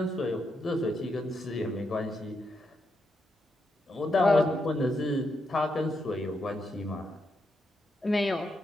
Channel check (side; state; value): both; normal; correlation 0.82